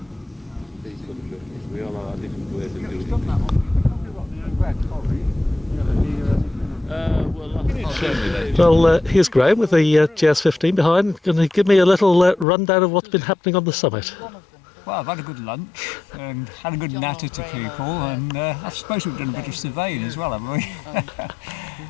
Well, here's Graham with the GS15 behind. Going to give me a little rundown of what's been happening on the summit. Well, I've had a good lunch and had a good natter to people, and I suppose we've done a bit of surveying as well, haven't we?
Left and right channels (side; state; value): right; drops out; at 12.5 s